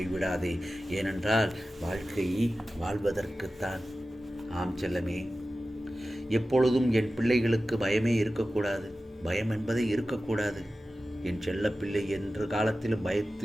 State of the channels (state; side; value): normal; both; correlation 0.95